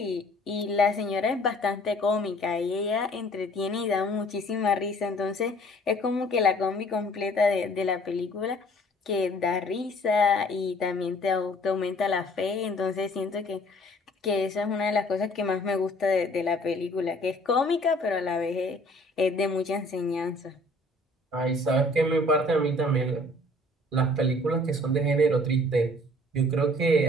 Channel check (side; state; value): both; normal; correlation 0.55